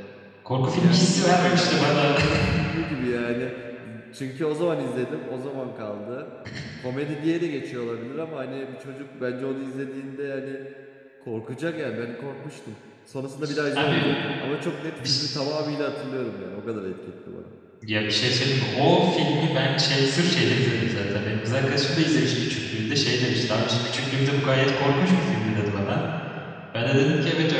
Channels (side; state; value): both; identical; correlation 1.00